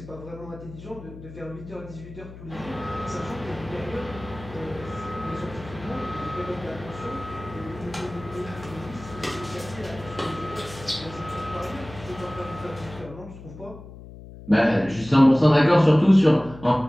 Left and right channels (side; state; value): left; noise; hum, 15 dB below the sound